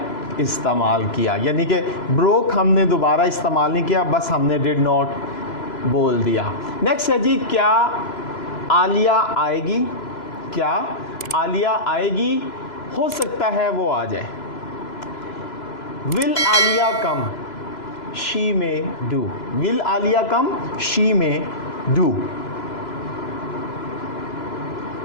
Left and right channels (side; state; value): right; late; 2.0 ms